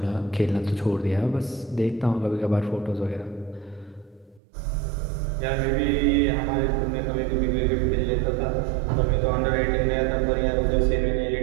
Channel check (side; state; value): left; drops out; at 4.4 s